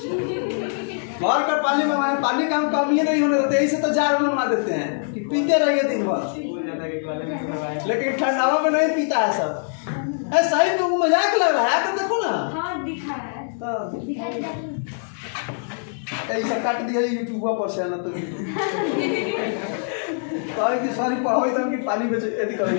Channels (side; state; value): right; silent; digital silence